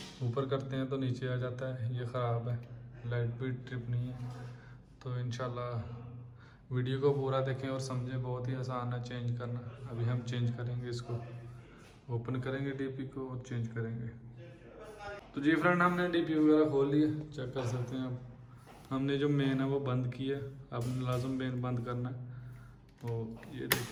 ऊपर करते हैं तो नीचे आ जाता है, ये ख़राब है। लाइट भी ट्रिप नहीं है। तो इंशाल्लाह वीडियो को पूरा देखें और समझें। बहुत ही आसान है चेंज करना। अभी हम चेंज करेंगे इसको, ओपन करेंगे डीपी को और चेंज करेंगे। तो जी फ्रेंड, हमने डीपी वगैरह खोल लिया, चेक कर सकते हैं आप। हमने जो मेन है वो बंद किया। अब लाजम मेन बंद करना है। तो ये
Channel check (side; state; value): both; identical; correlation 1.00